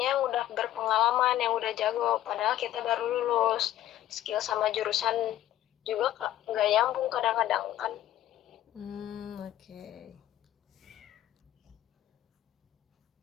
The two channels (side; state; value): right; quieter; 13.2 dB